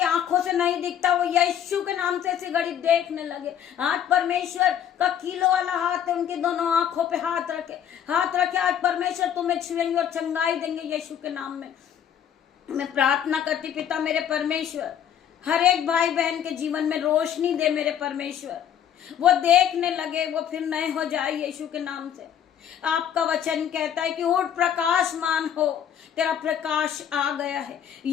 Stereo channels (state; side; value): quieter; right; 9.4 dB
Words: आंखों से नहीं दिखता वो यीशु के नाम से इसी घड़ी देखने लगे। आज परमेश्वर का कीलो वाला हाथ है, उनकी दोनों आंखों पे हाथ रखे। आज परमेश्वर तुम्हें छुएंगे और चंगाई देंगे यीशु के नाम में। मैं प्रार्थना करती पिता मेरे परमेश्वर, हर एक भाई बहन के जीवन में रोशनी दे मेरे परमेश्वर, वो देखने लगे, वो फिर नए हो जाए यीशु के नाम से। आपका वचन कहता है कि उठ प्रकाशमान हो, तेरा प्रकाश आ गया है।